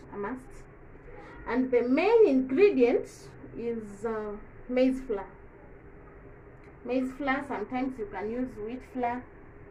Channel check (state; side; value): identical; both; correlation 1.00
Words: a must. And the main ingredient is maize flour. Maize flour, sometimes you can use wheat flour,